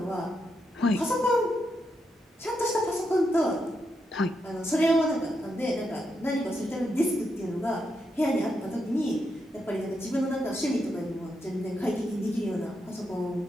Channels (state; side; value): normal; both; correlation 0.83